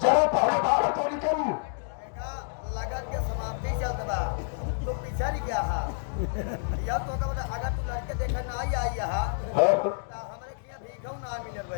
जरा पहले बाहर तो निकल। लगन के समाप्ति चलता बा तो पीछा नहीं गया हा। यह तो का मतलब अगर तू लड़के देखा ना आई हा तो हमरे किया भीखौ ना मिलल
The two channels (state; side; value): silent; right; digital silence